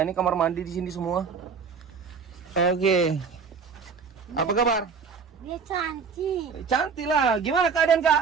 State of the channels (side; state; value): left; quieter; 5.7 dB